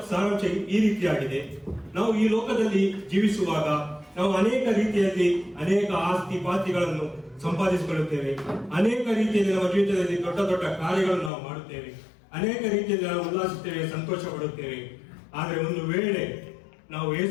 ಸಾರಾಂಶ ಈ ರೀತಿಯಾಗಿದೆ. ನಾವು ಈ ಲೋಕದಲ್ಲಿ ಜೀವಿಸುವಾಗ ನಾವು ಅನೇಕ ರೀತಿಯಲ್ಲಿ ಅನೇಕ ಆಸ್ತಿ ಪಾಸ್ತಿಗಳನ್ನು ಸಂಪಾದಿಸಿಕೊಳ್ಳುತ್ತೇವೆ. ಅನೇಕ ರೀತಿಯಲ್ಲಿ ನಮ್ಮ ಜೀವಿತದಲ್ಲಿ ದೊಡ್ಡ ದೊಡ್ಡ ಕಾರ್ಯಗಳನ್ನು ನಾವು ಮಾಡುತ್ತೇವೆ. ಅನೇಕ ರೀತಿಯಲ್ಲಿ ನಾವು ಉಲ್ಲಾಸಿಸುತ್ತೇವೆ, ಸಂತೋಷ ಪಡುತ್ತೇವೆ. ಆದರೆ ಒಂದು ವೇಳೆ ನಾವು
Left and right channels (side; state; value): right; drops out; at 11.3 s